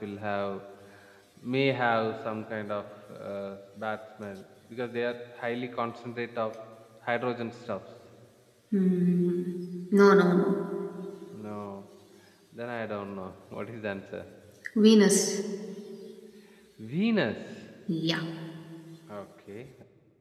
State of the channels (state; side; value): identical; both; correlation 1.00